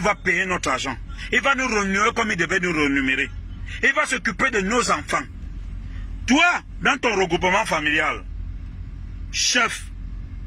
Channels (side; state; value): both; identical; correlation 1.00